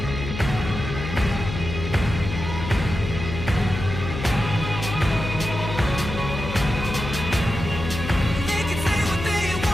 They can say what they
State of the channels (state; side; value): noise; left; hum, 6 dB below the sound